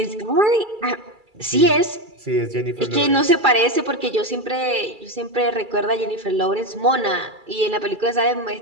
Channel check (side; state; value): left; late; 2.3 ms